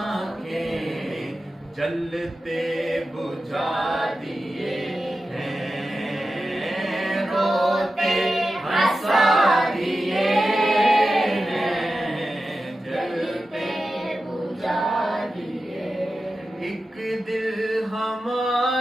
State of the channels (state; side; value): normal; both; correlation 0.92